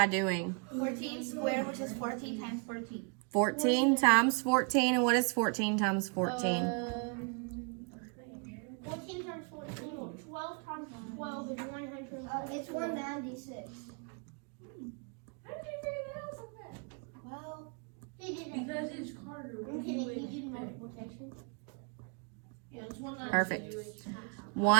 doing? 14 squared, which is 14 times 14. 14 times 14, and what is 14 times 14? 14 times 14. 12 times 12 is 900. It's 196. How did you figure that out so fast? Well, he did it. Because it's harder. Okay, You would he did expect. multiplication. Perfect.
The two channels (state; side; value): quieter; left; 37.7 dB